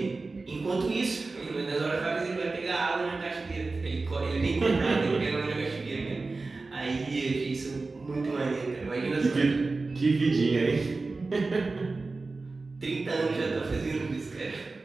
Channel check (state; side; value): quieter; left; 3.7 dB